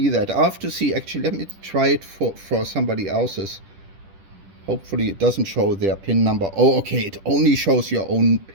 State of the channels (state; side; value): late; left; 10 ms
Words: that. I'll have to see, actually, let me try it for somebody else's. Hopefully it doesn't show their PIN number. Oh, okay, it only shows your own